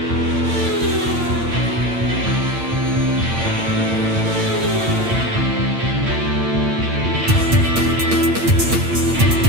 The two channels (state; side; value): late; left; 9.0 ms